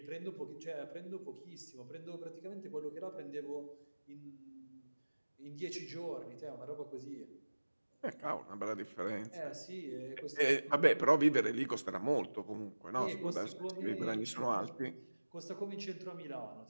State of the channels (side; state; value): both; inverted; correlation -1.00